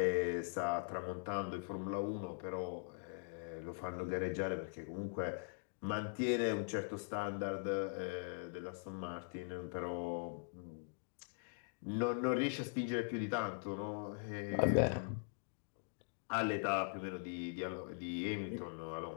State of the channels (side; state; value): right; silent; digital silence